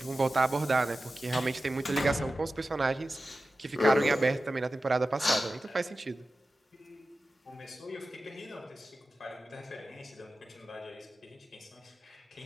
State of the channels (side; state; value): both; normal; correlation 0.94